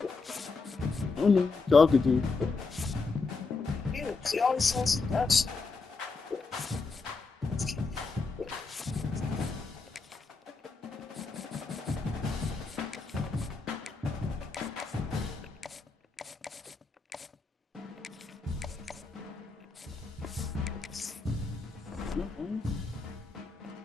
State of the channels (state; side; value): quieter; right; 4.2 dB